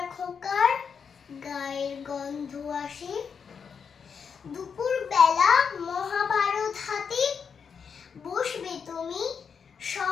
খোকার গায়ের গন্ধ আসে। দুপুর বেলা মহাভারত হাতে বসবে তুমি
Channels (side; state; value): right; quieter; 6.4 dB